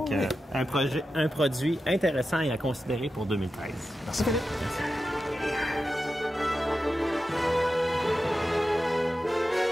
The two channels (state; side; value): normal; both; correlation 0.91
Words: un produit intéressant et à considérer pour 2013. Merci, Philippe. Merci.